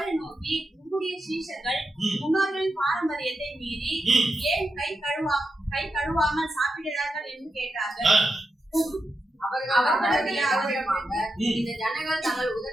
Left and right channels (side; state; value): both; normal; correlation 0.87